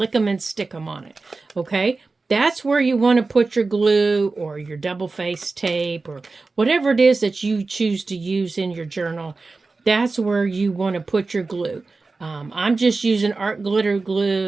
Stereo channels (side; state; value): left; quieter; 3.8 dB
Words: stick 'em on it, okay? That's where you want to put your glue or your double-faced tape or whatever it is that you choose to use in your journal. That's where you want to put your glue. I'm just using art glitter